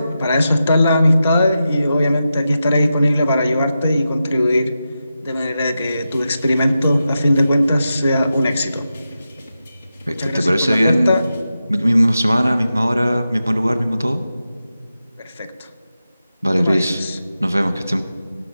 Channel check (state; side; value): inverted; both; correlation -0.90